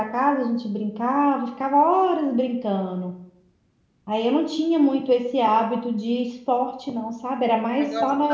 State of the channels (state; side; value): identical; both; correlation 1.00